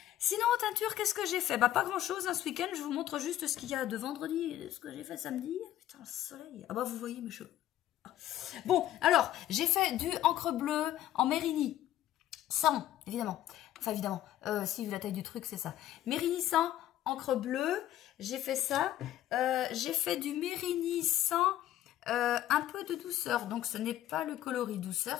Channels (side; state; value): right; quieter; 12.9 dB